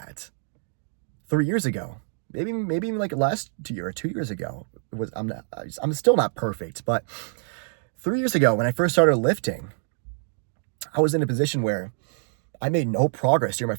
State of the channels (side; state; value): left; silent; digital silence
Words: 3 years ago, maybe even last year or 2 years ago. I'm still not perfect, but 3 years ago when I first started lifting, I was in a position where I made no progress during my